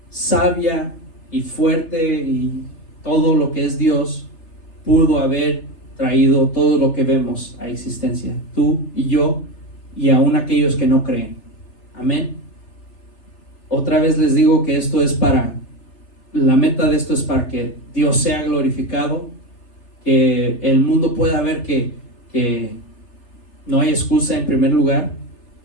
sabia y fuerte y todo lo que es Dios pudo haber traído todo lo que vemos a existencia, tú y yo y aún aquellos que no creen. Amén. Otra vez les digo que la meta de esto es para que Dios sea glorificado, que el mundo pueda ver que no hay excusa en primer lugar,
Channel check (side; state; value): right; late; 3.3 ms